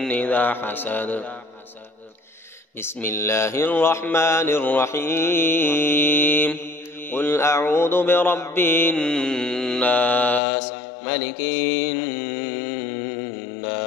إذا حسد. بسم الله الرحمن الرحيم. قل أعوذ برب الناس ملك الناس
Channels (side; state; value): right; drops out; at 10.4 s